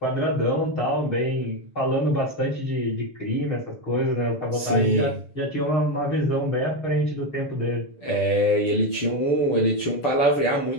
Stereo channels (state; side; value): late; right; 6.9 ms